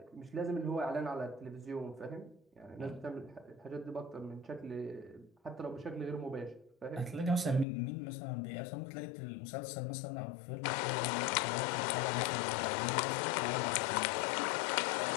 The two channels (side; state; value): right; drops out; at 7.7 s